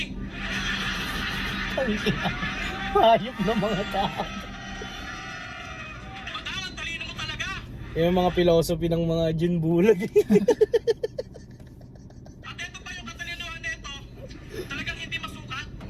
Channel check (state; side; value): identical; both; correlation 1.00